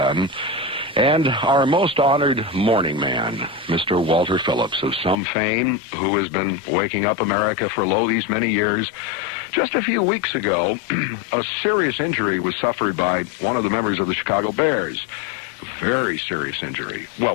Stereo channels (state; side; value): drops out; right; at 5.2 s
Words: And our most honored morning man, Mr. Walter Phillips, of some fame, who has been waking up America for these many years. Just a few weeks ago, a serious injury was suffered by one of the members of the Chicago Bears. Very serious injury. Well,